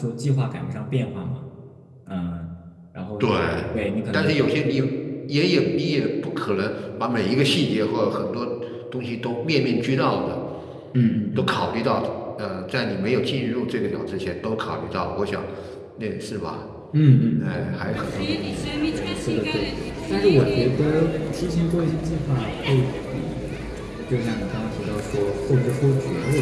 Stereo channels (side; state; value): both; identical; correlation 1.00